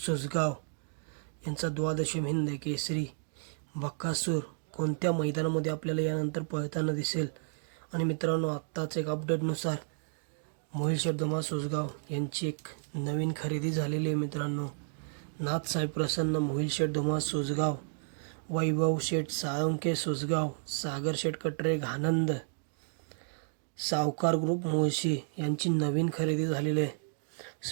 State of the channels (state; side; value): silent; left; digital silence